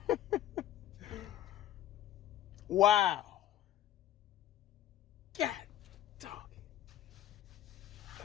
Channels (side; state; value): right; quieter; 12.4 dB